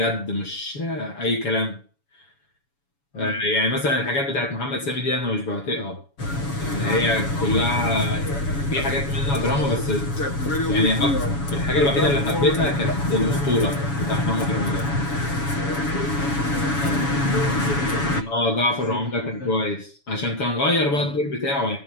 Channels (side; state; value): right; late; 7.1 ms